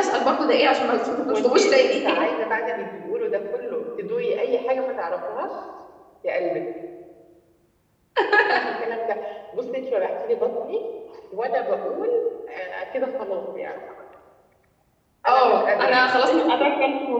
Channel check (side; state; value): both; identical; correlation 1.00